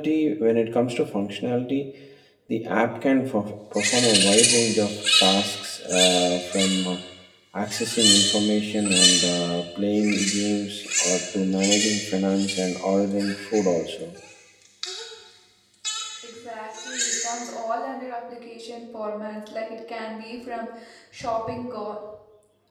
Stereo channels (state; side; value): identical; both; correlation 1.00